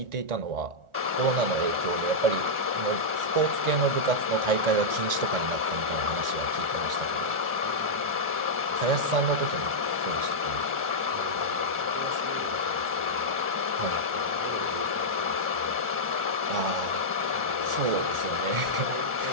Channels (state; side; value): late; left; 1.4 ms